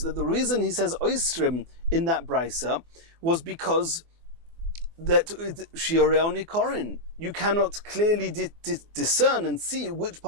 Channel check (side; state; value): left; late; 24 ms